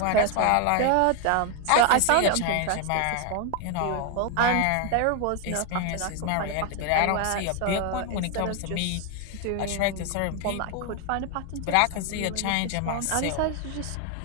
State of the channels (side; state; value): both; different; correlation 0.01